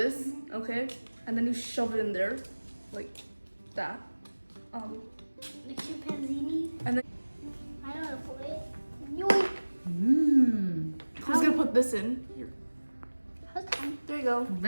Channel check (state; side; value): inverted; both; correlation -1.00